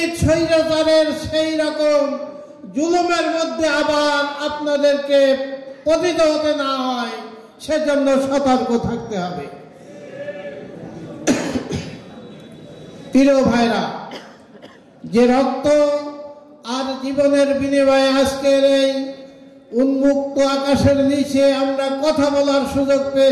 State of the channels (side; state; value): both; identical; correlation 1.00